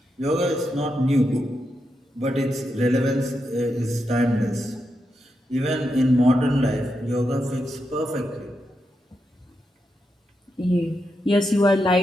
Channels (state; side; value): normal; both; correlation 0.85